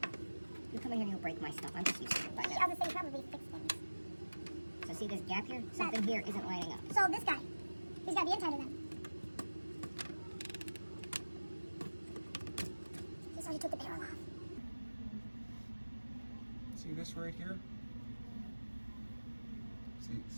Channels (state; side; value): inverted; both; correlation -1.00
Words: You come in here and you'll break my stuff. I'm just used to it by I now. was gonna say probably fix things. So see this gap here? Something here isn't lining up. So this guy, he's gotta be inside of them. So he took the barrel off. See this right here?